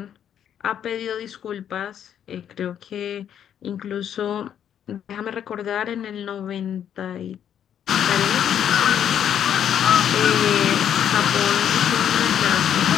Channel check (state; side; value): quieter; right; 9.4 dB